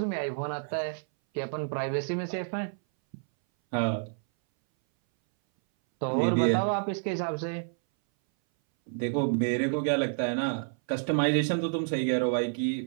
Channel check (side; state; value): left; silent; 59 dB below the other